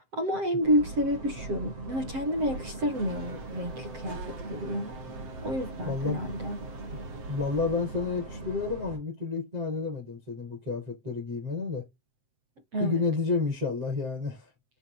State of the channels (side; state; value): left; late; 7.7 ms